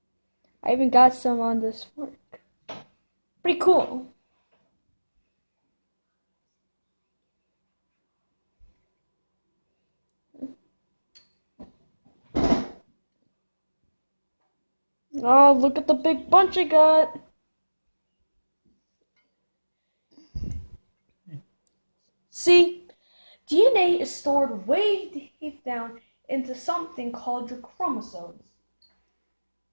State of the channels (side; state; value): both; inverted; correlation -1.00